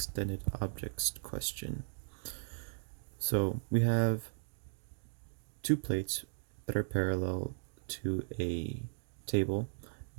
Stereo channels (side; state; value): left; silent; digital silence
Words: objects question. So we have two plates that are parallel to a table.